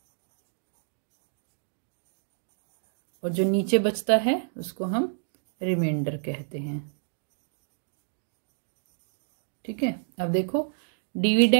और जो नीचे बचता है उसको हम रिमाइंडर कहते हैं, ठीक है। अब देखो,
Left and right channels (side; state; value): left; silent; digital silence